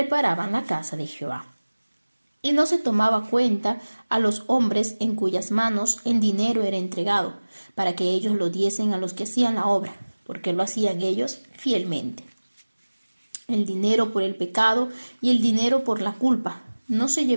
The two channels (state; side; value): inverted; both; correlation -1.00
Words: la casa de Jehová. Y no se tomaba cuenta a los hombres en cuyas manos el dinero era entregado, para que ellos lo diesen a los que hacían la obra, porque lo hacían ellos fielmente. El dinero por el pecado y el dinero por la culpa no se